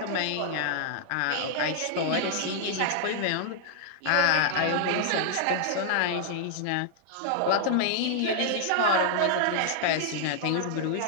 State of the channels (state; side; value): different; both; correlation -0.01